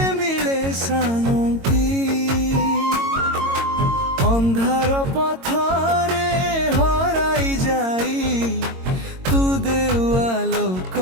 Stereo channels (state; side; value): late; left; 22 ms